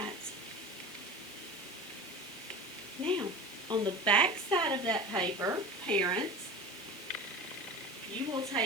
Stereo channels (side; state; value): both; normal; correlation 0.33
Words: Now, on the back side of that paper, parents, you will